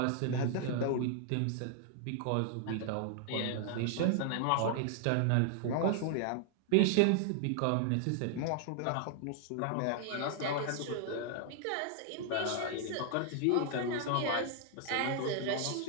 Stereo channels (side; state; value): both; different; correlation 0.00